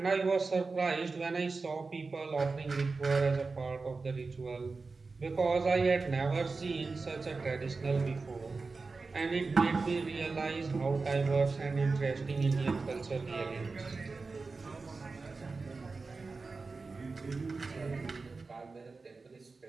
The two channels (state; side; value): quieter; left; 4.1 dB